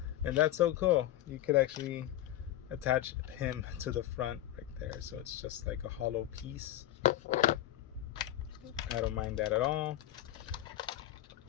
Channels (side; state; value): right; quieter; 13.1 dB